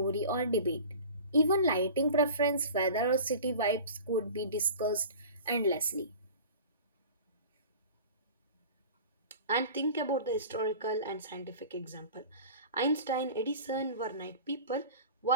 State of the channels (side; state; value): both; inverted; correlation -0.38